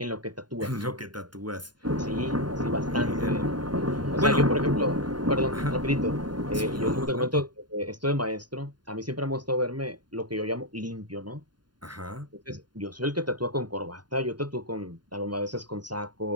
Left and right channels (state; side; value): late; left; 0.71 ms